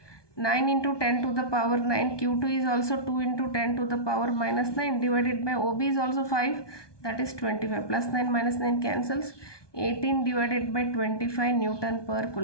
9 into 10 to the power 9 Q2 is also 2 into 10 to the power minus 9 divided by OB is also 5, that is 25. Plus 9 minus 9 cancels, 18 divided by 25 Newton per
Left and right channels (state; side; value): late; right; 1.2 ms